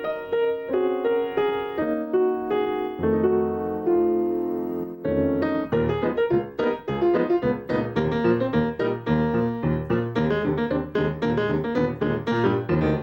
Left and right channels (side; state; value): both; identical; correlation 1.00